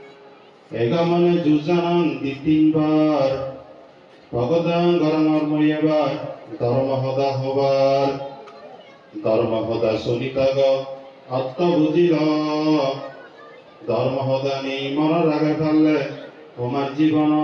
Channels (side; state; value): both; identical; correlation 1.00